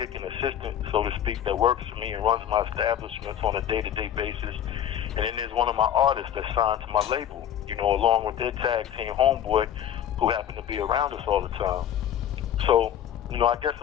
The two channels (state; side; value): quieter; right; 10.2 dB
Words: and assistant, so to speak, that works for me and runs my establishments on a day-to-day basis. And then there's one of my artists that's signed to my label, you know, along with their tag team homeboy, who happened to be around us all the time. So, you know, I guess